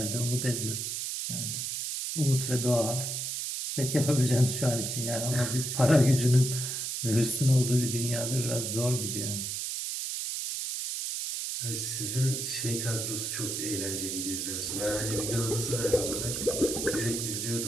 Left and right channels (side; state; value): right; noise; hiss, 3 dB below the sound